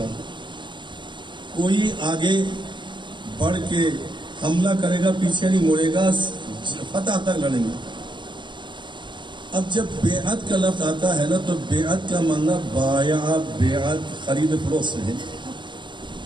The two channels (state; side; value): late; left; 0.23 ms